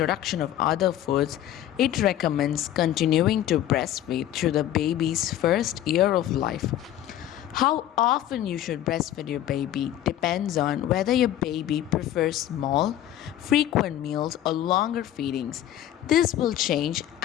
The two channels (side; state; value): right; quieter; 12.2 dB